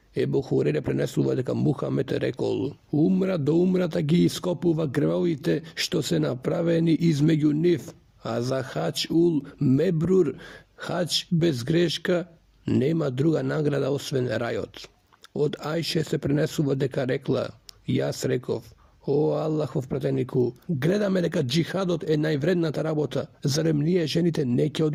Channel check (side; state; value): both; identical; correlation 1.00